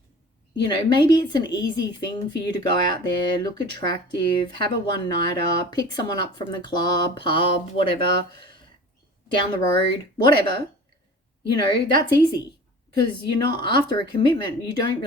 you know, maybe it's an easy thing for you to go out there, look attractive, have a one-nighter, pick someone up from the club, pub, whatever, down the road, whatever. You know, that's easy because you're not after a commitment. You don't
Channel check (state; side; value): normal; both; correlation 0.41